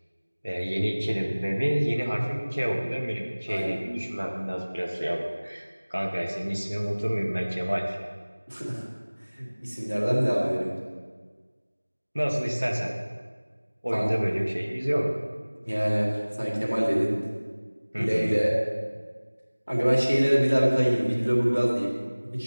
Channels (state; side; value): inverted; both; correlation -1.00